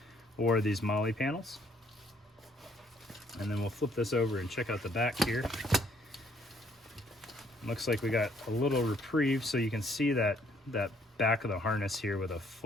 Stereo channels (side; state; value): both; normal; correlation 0.65